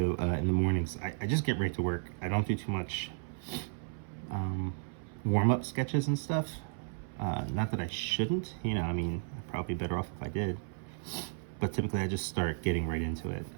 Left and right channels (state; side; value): silent; left; 55 dB below the other